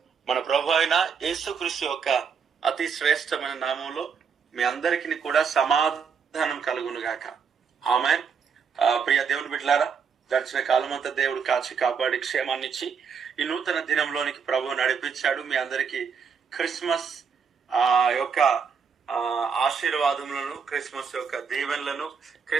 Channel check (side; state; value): left; quieter; 6.3 dB